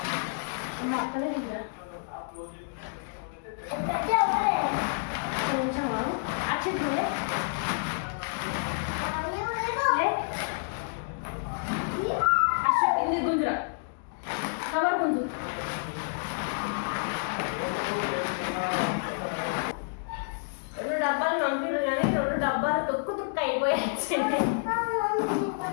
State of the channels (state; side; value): silent; right; digital silence